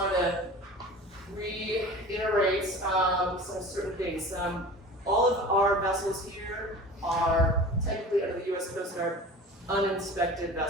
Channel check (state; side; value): normal; both; correlation 0.38